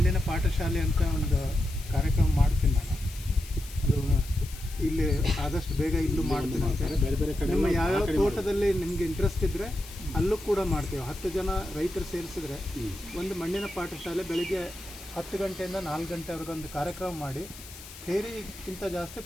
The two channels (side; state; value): left; noise; hiss, 16 dB below the sound